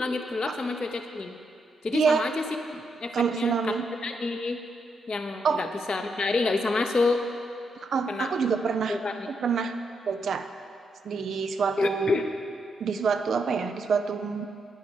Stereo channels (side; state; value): both; normal; correlation 0.80